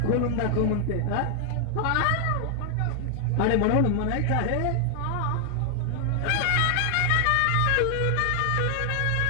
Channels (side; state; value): both; different; correlation 0.00